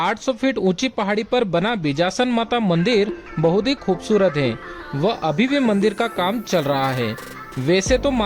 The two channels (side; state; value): both; identical; correlation 1.00